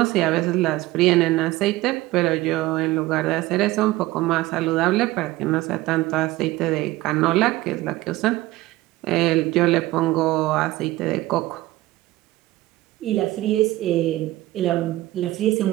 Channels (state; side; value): quieter; left; 17.8 dB